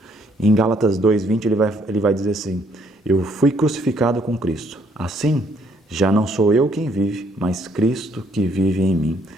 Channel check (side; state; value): both; normal; correlation 0.67